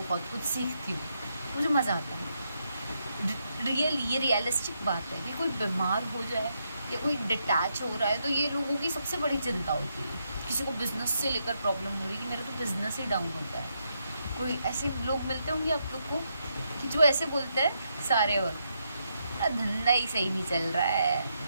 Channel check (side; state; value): both; inverted; correlation -0.80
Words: कुछ सीखती हूँ, मुझे मज़ा आता है। ये रियलिस्टिक बात है कि कोई बीमार हो जाए या कोई डिटैच हो रहा है, तो ये लोगों की सबसे बड़ी चिंता होती है। किसी को बिज़नेस से लेकर प्रॉब्लम हो रही है कि मेरा तो बिज़नेस ही डाउन होता है। कोई ऐसे लोग मिलते होंगे आप लोग को कि जो ऐसे बोलते हैं सारे वक्त, मेरा धंधा ही सही नहीं चल रहा है,